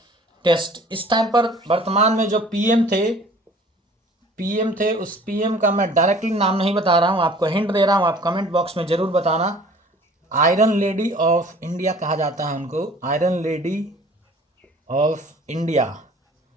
टेस्ट। इस टाइम पर वर्तमान में जो पीएम थे, उस पीएम का मैं डायरेक्टली नाम नहीं बता रहा हूँ, आपको हिंट दे रहा हूँ, आप कमेंट बॉक्स में ज़रूर बताना। आयरन लेडी ऑफ इंडिया कहा जाता है उनको, आयरन लेडी ऑफ इंडिया।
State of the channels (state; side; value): normal; both; correlation 0.50